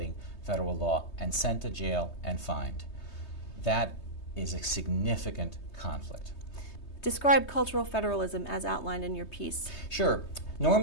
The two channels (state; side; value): late; right; 3.2 ms